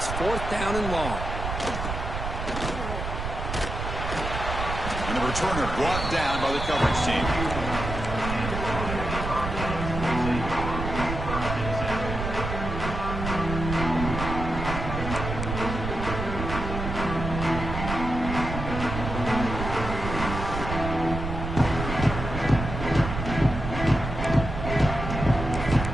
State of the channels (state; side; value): noise; right; rumble, 5 dB below the sound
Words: fourth down and long. And the returner brought down by the coverage team.